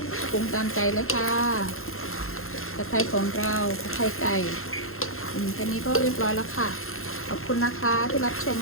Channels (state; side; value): late; right; 0.61 ms